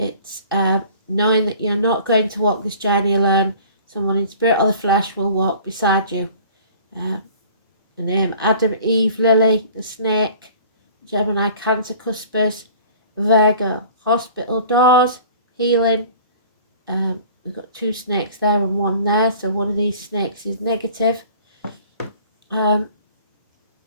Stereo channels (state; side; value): inverted; both; correlation -0.47